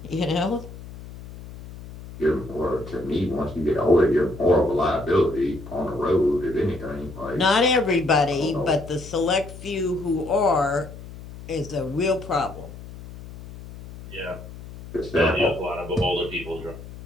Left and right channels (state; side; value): noise; left; hum, 14 dB below the sound